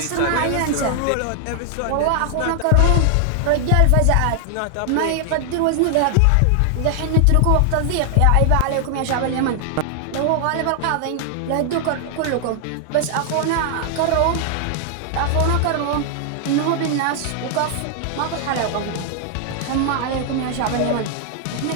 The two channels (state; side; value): different; both; correlation 0.00